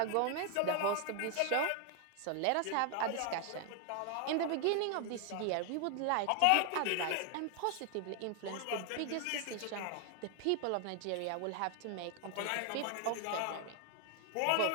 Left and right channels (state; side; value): different; both; correlation 0.00